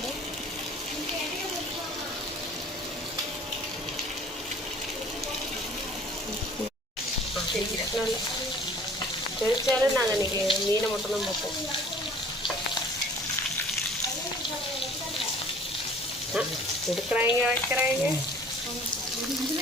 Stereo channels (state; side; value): normal; both; correlation 0.50